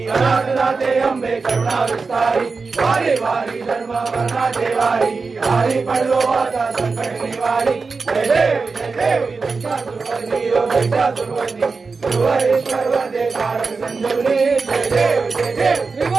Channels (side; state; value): left; quieter; 4.4 dB